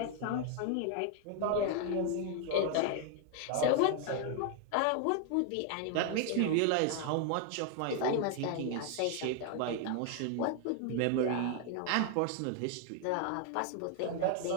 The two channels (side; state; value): both; different; correlation 0.00